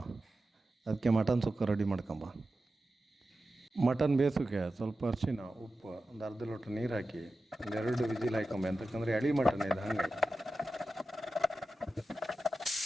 ಅದಕ್ಕೆ ಮಟನ್ ಸುಕ್ಕ ರೆಡಿ ಮಾಡ್ಕೊಂಬ. ಮಟನ್ ಬೇಯಿಸೋಕೆ ಸ್ವಲ್ಪ ಅರಿಶಿನ, ಉಪ್ಪು, ಒಂದು ಅರ್ಧ ಲೋಟ ನೀರು ಹಾಕಿ 2 ವಿಜಿಲ್ ಹಾಕೊಂಬ. ಅಂತಕ್ಕಂದ್ರೆ ಎಳಿ ಮಟನ್ ಇದೆ ಹಂಗೆ.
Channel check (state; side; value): normal; both; correlation 0.92